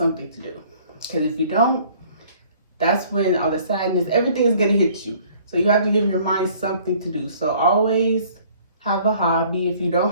to do, because if you don't, that's when all the sadness, everything is going to hit you. So you have to give your mind something to do. So always have a hobby. If you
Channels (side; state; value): both; inverted; correlation -0.56